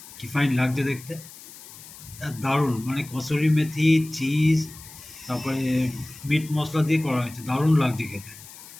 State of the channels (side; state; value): left; noise; hiss, 17 dB below the sound